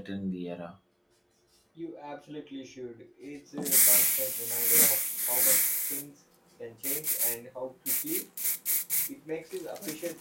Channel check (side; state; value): both; identical; correlation 1.00